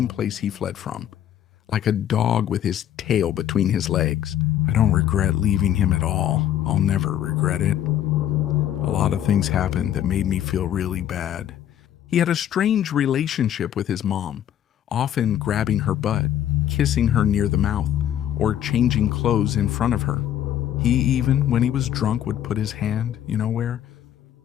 place he fled from. Like a dog with his tail between his legs. I don't regret leaving him at all. I'll never regret it. A lot of things happened that made me feel really bad. He had a strange relationship with his mom, often grabbing her butt, kissing her near the mouth, or changing clothes in front of her. He even, when he was drunk, would put his hand, you know where?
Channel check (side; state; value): right; quieter; 10.9 dB